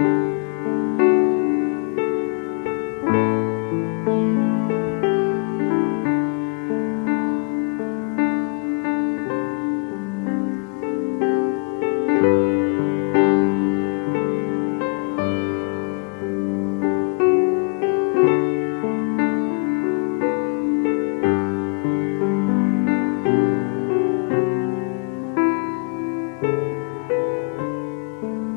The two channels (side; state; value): right; quieter; 39.8 dB